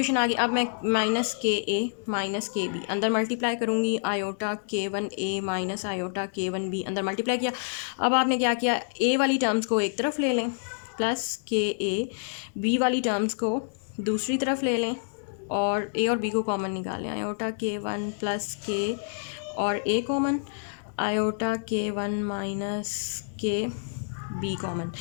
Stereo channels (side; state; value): right; silent; digital silence